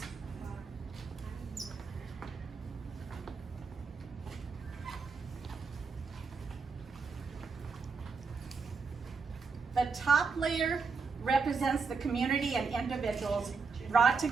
The top layer represents the community and individuals brought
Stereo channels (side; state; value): left; quieter; 4.9 dB